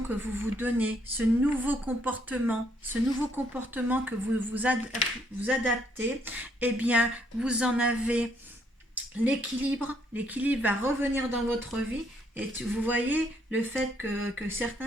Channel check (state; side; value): normal; both; correlation 0.70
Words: que vous vous donnez, ce nouveau comportement que vous adaptez, eh bien, vous en avez l'équilibre va revenir dans votre vie. Et vous voyez le fait que